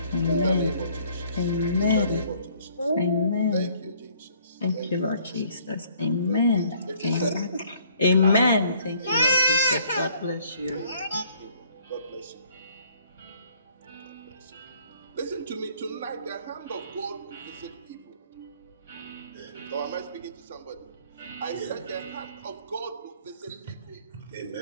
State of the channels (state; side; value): inverted; both; correlation -0.60